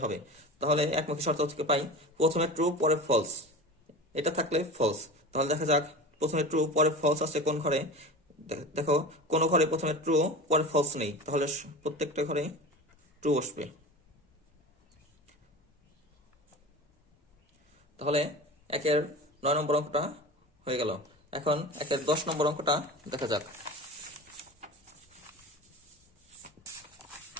হবে। তাহলে একমুখী শর্ত থেকে পাই প্রথমে ট্রু পরে ফলস, এটা থাকলে ফলস। তাহলে দেখা যাক প্রথমে ট্রু পরে ফলস আছে কোন ঘরে। দেখো কোনো ঘরে প্রথমে ট্রু পরে ফলস নেই, তাহলে প্রত্যেকটা ঘরে ট্রু বসবে। তাহলে 1-এর 9 নম্বর অঙ্কটা হয়ে গেল। এখন 1-এর 10 নম্বর অঙ্কটা দেখা যাক।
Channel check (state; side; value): normal; both; correlation 0.32